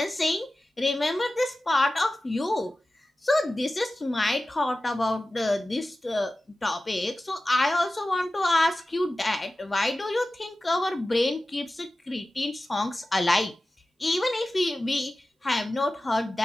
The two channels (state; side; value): normal; both; correlation 0.95